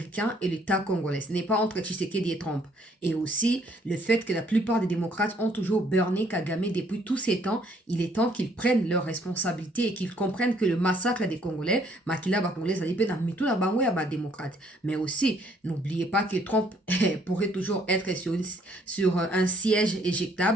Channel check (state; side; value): normal; both; correlation 0.65